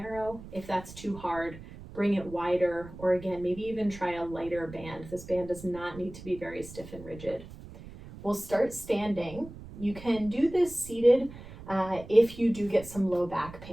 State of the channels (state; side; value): noise; right; rumble, 15 dB below the sound